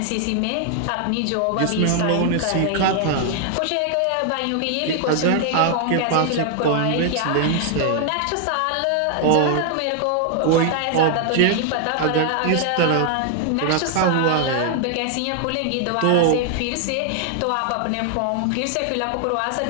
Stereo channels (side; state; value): both; different; correlation 0.00